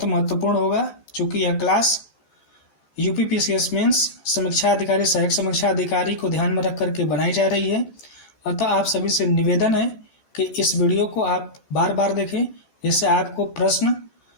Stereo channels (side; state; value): right; late; 14 ms